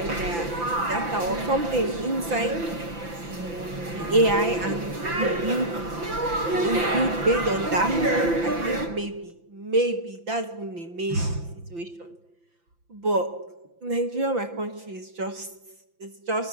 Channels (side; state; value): left; late; 5.9 ms